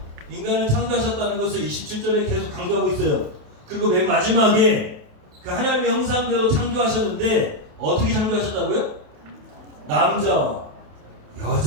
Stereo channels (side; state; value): left; late; 28 ms